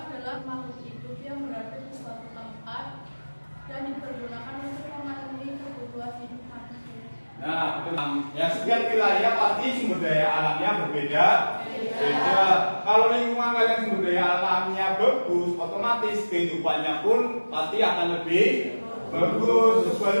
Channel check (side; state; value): both; inverted; correlation -1.00